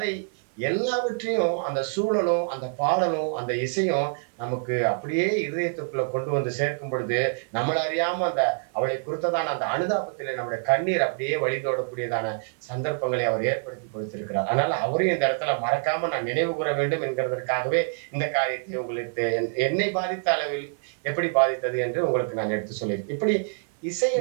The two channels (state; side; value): silent; left; 61 dB below the other